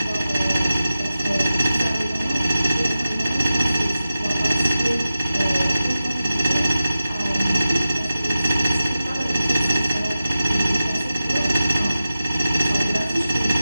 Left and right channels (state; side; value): inverted; both; correlation -0.93